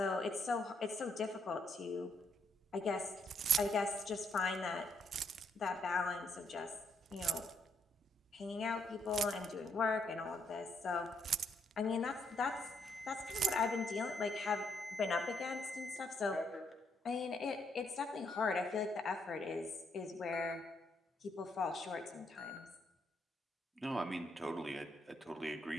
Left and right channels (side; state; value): both; normal; correlation 0.73